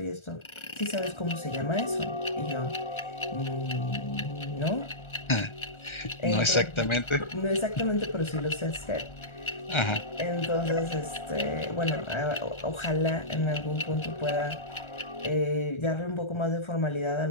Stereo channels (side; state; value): right; late; 1.3 ms